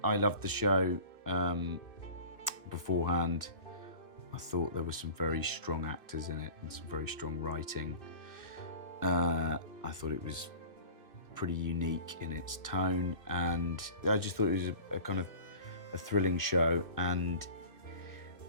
I loved the show beforehand. I thought there were some very strong actors in it and some very strong writing. I thought it was pretty unique in its tone, and I just thought it was a kind of a thrilling show. And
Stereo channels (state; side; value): late; right; 2.6 ms